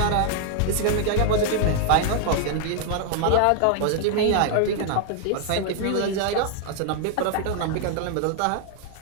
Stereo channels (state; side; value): different; both; correlation 0.00